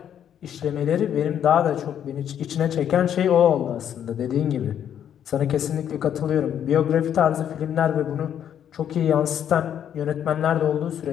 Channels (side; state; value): right; quieter; 9.5 dB